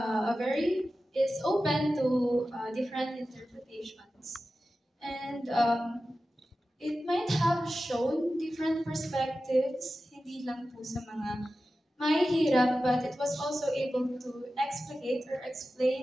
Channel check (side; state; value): both; normal; correlation 0.94